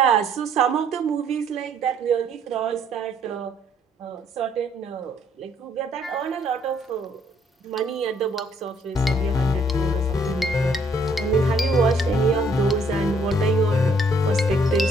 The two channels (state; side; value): normal; both; correlation 0.65